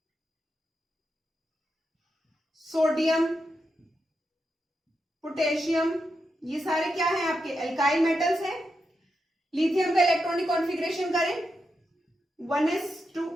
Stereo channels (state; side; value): normal; both; correlation 0.86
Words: सोडियम, पोटेशियम, ये सारे क्या हैं आपके? एल्काइल मेटल्स हैं। लिथियम का इलेक्ट्रॉनिक कॉन्फ़िगरेशन करें 1s2